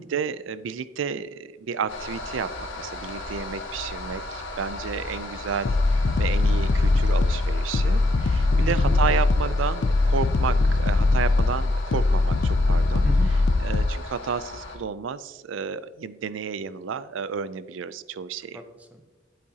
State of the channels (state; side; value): normal; both; correlation 0.73